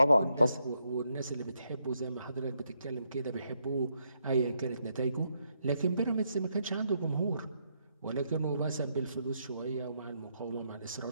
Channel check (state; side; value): inverted; both; correlation -0.78